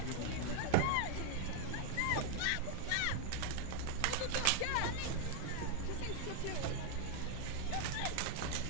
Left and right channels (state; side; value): different; both; correlation 0.00